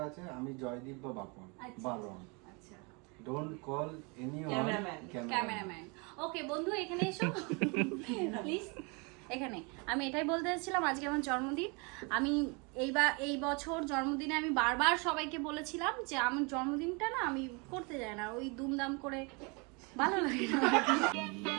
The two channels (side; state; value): left; quieter; 31.0 dB